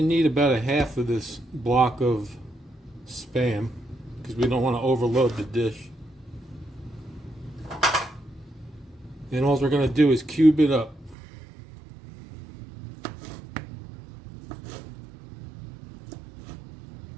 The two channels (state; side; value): drops out; left; at 11.2 s